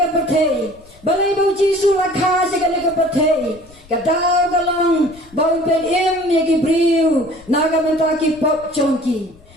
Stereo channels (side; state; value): left; noise; rumble, 25 dB below the sound